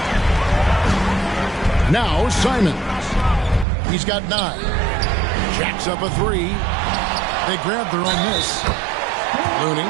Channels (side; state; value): left; drops out; at 3.7 s